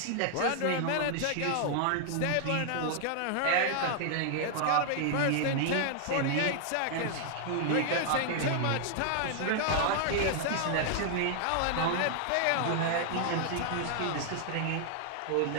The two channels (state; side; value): different; both; correlation -0.01